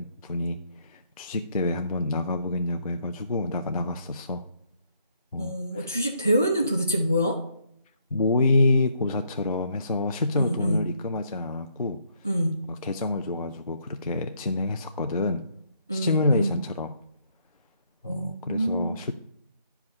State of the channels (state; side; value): inverted; both; correlation -0.70